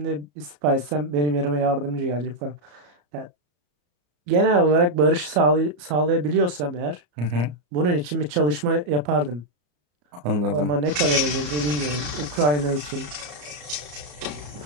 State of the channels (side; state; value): left; late; 34 ms